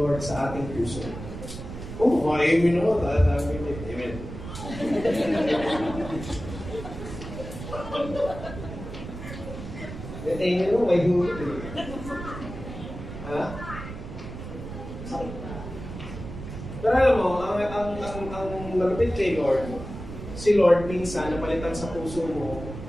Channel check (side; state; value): right; noise; rumble, 10 dB below the sound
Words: sa ating puso. Amen ako. Amen. Amen mo, may hulot eh. Ha? Pero alam mo, ang malapit kay Lord, si Lord minsan napalitan sa puso mo,